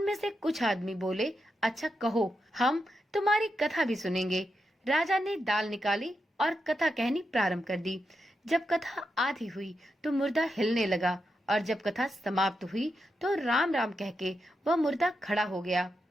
से कुछ आदमी बोले, अच्छा कहो, हम तुम्हारी कथा भी सुनेंगे। राजा ने दाल निकाली और कथा कहनी प्रारंभ कर दी। जब कथा आधी हुई तो मुर्दा हिलने लगा और जब कथा समाप्त हुई तो राम राम कह के वह मुर्दा खड़ा हो गया।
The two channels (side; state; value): both; normal; correlation 0.86